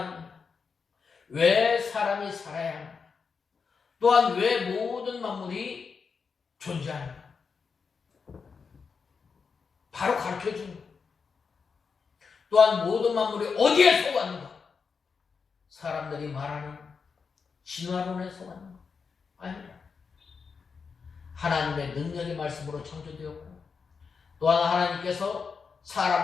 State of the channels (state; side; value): quieter; right; 5.5 dB